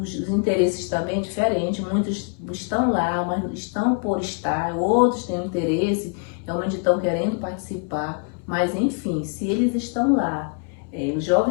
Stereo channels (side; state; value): right; quieter; 38.6 dB